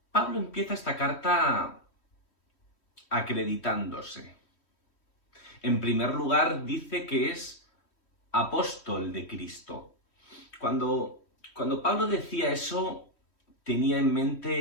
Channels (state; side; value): late; right; 3.1 ms